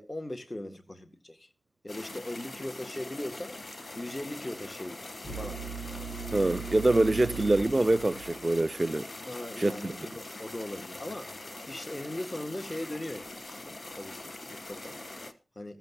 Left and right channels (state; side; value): normal; both; correlation 0.97